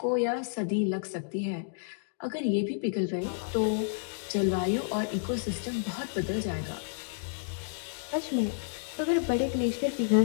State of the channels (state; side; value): silent; right; digital silence